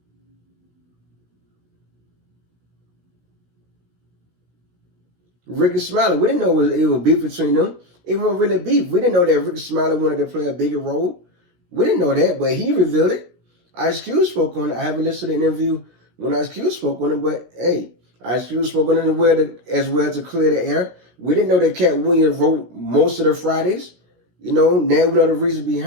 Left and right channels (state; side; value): late; left; 17 ms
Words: Ricky Smiley. We didn't know it was beef between them. It wasn't really beef. We didn't know that Ricky Smiley wanted to play a bigger role. We didn't know that, but he revealed it. Ice Cube spoke on it. I haven't listened to the interview when Ice Cube spoke on it, but hey, Ice Cube spoke on it as well to clear the air. We didn't know that Katt Williams wrote most of the Fridays. You know, now we know the reason